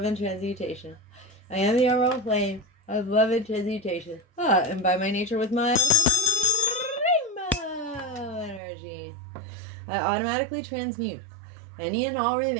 and transmutation. I am the emerald flame of love and transmutation. And by my nature with my rainbow energy, I automatically transmute any and all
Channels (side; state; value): left; drops out; at 8.6 s